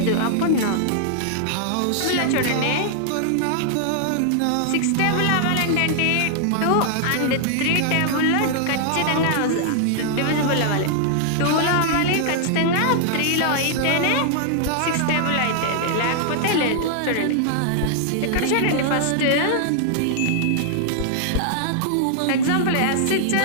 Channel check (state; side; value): different; both; correlation -0.01